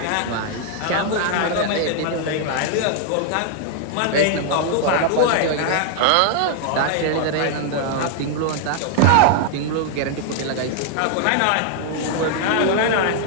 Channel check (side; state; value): both; different; correlation 0.00